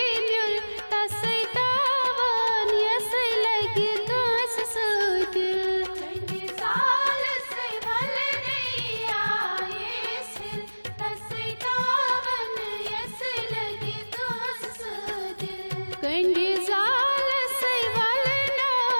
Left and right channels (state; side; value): inverted; both; correlation -1.00